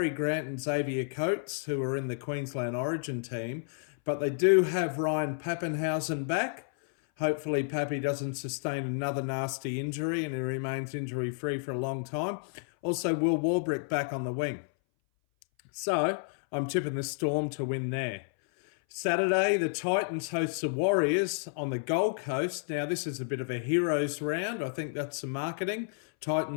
Grant and Xavier Coates, who are in the Queensland Origin team. But they do have Ryan Papenhuyzen back. Hopefully Pappy doesn't sustain another nasty injury and he remains injury-free for a long time. Also, Will Warbrick back on the wing. So, I'm tipping the Storm to win there. Saturday, the Titans host the Warriors on the Gold Coast. Now, this is a bit of a heroes round. I think that's some marketing.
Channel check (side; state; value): right; silent; 57 dB below the other